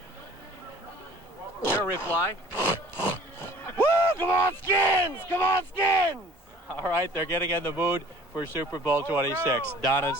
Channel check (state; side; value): normal; both; correlation 0.50